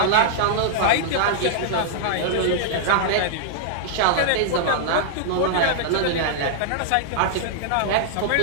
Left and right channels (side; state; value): both; different; correlation -0.01